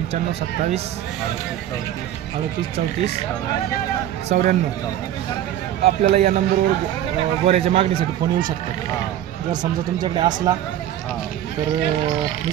27 38 34 94। आपल्याला या नंबरवर गोऱ्याच्या मागणीसाठी फोन येऊ शकतात। जर समजा तुमच्याकडे असला तर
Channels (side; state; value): left; quieter; 11.8 dB